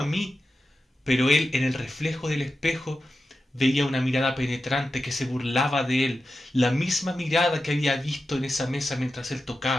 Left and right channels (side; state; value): both; normal; correlation 0.91